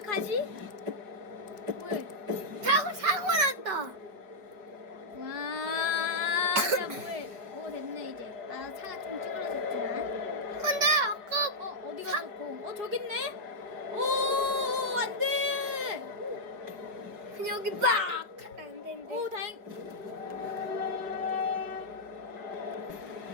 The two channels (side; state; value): left; late; 5.3 ms